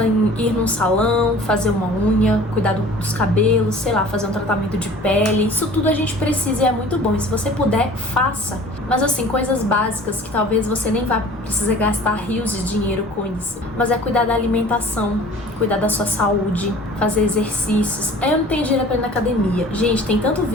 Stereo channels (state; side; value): normal; both; correlation 0.46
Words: em ir num salão, fazer uma unha, cuidar dos cabelos, sei lá, fazer um tratamento de pele. Isso tudo a gente precisa e é muito bom. E se você puder, faça. Mas assim, coisas básicas que talvez você nem vá precisar gastar rios de dinheiro com isso. Mas é cuidar da alimentação, cuidar da sua saúde, fazer exercícios. Eu não tenho dinheiro pra ir na academia. Gente, tem tanto